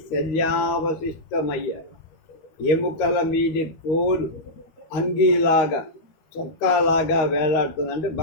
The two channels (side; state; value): right; late; 12 ms